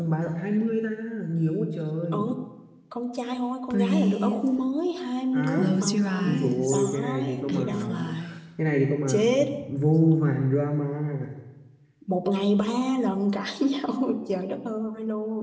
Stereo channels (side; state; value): both; identical; correlation 1.00